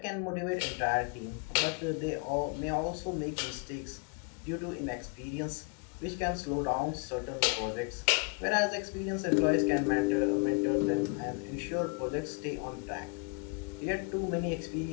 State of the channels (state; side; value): quieter; right; 33.8 dB